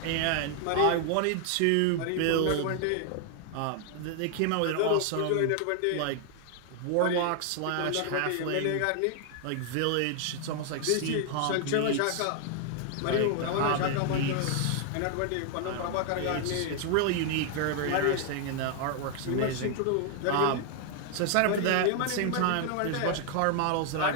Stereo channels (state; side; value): different; both; correlation 0.00